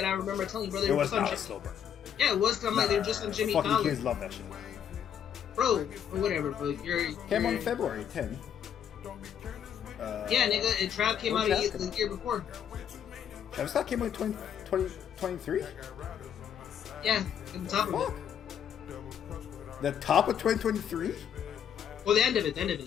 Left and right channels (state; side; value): quieter; right; 8.9 dB